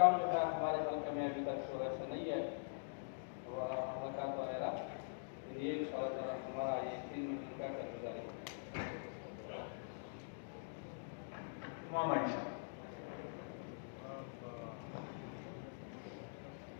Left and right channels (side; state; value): right; silent; digital silence